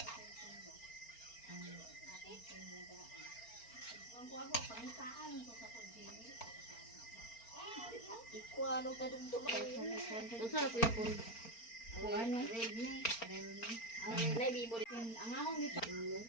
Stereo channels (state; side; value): late; right; 4.4 ms